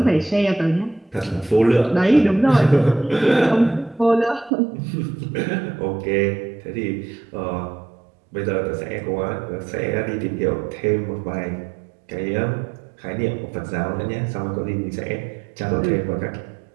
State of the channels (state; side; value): drops out; left; at 4.5 s